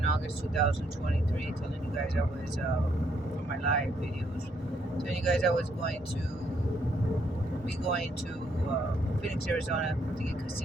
August 2023, telling you guys I was, for my live videos, telling you guys I was going to Phoenix, Arizona to get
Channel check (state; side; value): normal; both; correlation 0.72